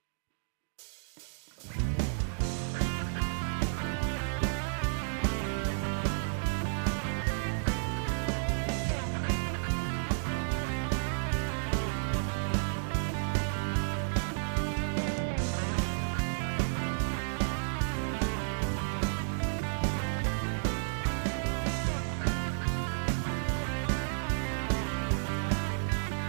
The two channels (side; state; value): left; silent; digital silence